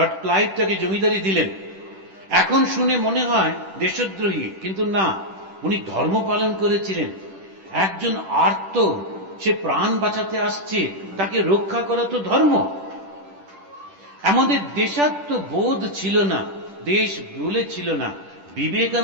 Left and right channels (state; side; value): late; left; 10 ms